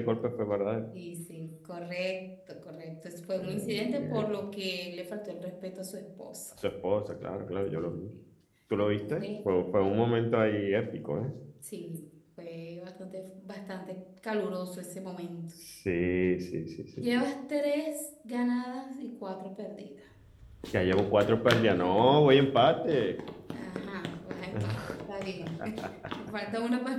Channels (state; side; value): identical; both; correlation 1.00